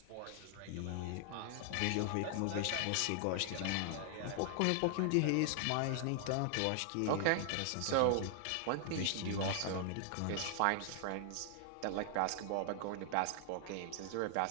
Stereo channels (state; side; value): different; both; correlation 0.00